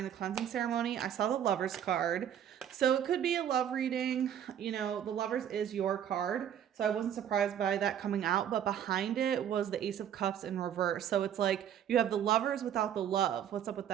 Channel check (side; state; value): left; quieter; 9.7 dB